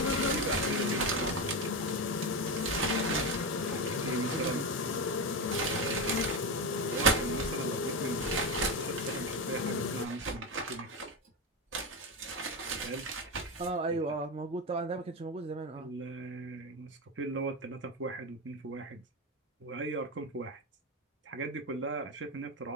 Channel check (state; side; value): normal; both; correlation 0.15